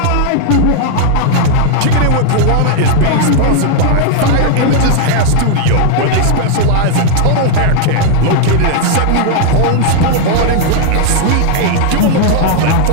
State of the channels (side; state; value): both; different; correlation 0.00